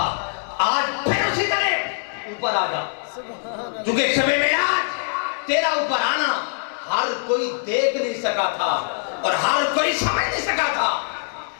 آج پھر اسی طرح اوپر آ جا، کیونکہ شب معراج تیرا اوپر آنا ہر کوئی دیکھ نہیں سکا تھا اور ہر کوئی سمجھ نہیں سکا تھا،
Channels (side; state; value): right; silent; 58 dB below the other